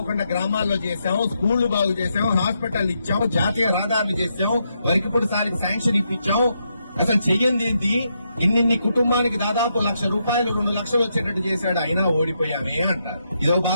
గ్రామాల్లో చేశాం, స్కూళ్లు బాగు చేశాం, హాస్పిటల్ ఇచ్చాం, జాతీయ రహదారులు చేశాం, వరకిప్పుడు సారికి శాంక్షన్ ఇప్పించాం, అసలు చెయ్యింది ఏంటి, ఇన్నిన్ని కుటుంబానికి దాదాపు ₹1,00,000 2 లక్షలు వచ్చేటట్టు చేశాడు, అయినా ఓడిపోయామే అంటారు. ఇదో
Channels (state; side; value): inverted; both; correlation -0.81